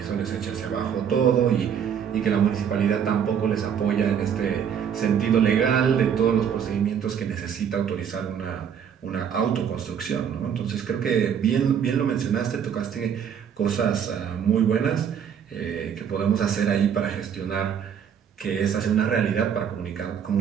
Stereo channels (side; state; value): left; quieter; 8.1 dB